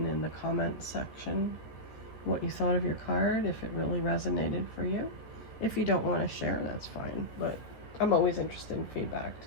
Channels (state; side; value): late; right; 14 ms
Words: the comment section what you thought of your card, if it really resonated for you. If you don't want to share, that's fine. But I'm always interested in feedback